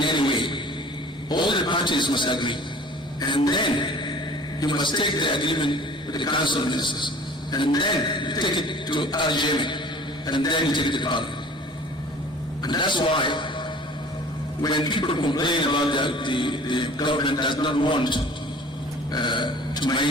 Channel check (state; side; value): normal; both; correlation 0.46